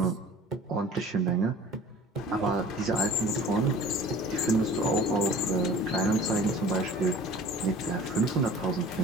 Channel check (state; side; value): normal; both; correlation 0.44